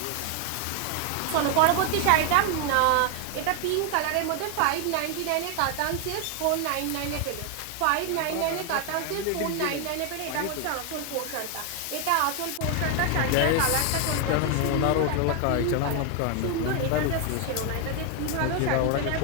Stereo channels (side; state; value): both; different; correlation 0.01